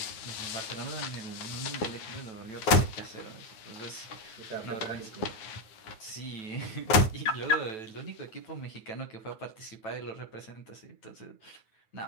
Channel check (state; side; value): late; right; 9.6 ms